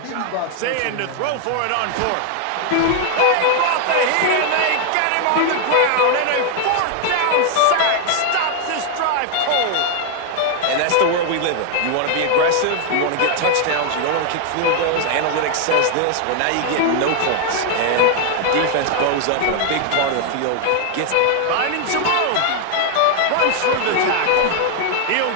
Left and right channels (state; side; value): different; both; correlation 0.00